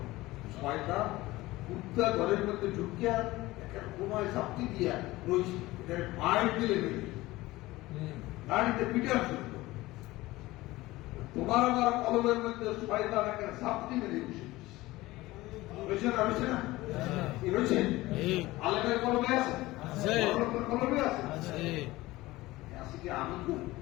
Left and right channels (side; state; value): right; quieter; 18.8 dB